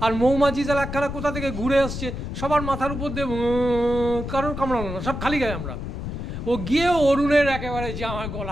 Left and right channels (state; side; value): noise; left; rumble, 6 dB below the sound